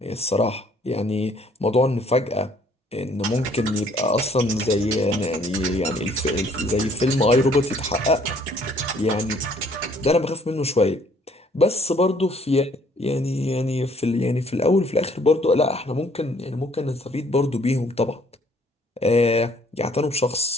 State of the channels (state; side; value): normal; both; correlation 0.61